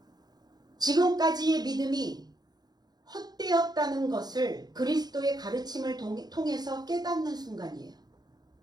지금까지의 믿음이 헛되었다는 것을 그리스도의 가르침을 통해서 깨닫는 순간이에요.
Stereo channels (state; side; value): late; left; 0.19 ms